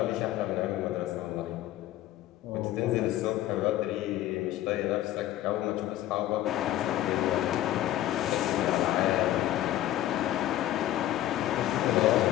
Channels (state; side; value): quieter; right; 13.8 dB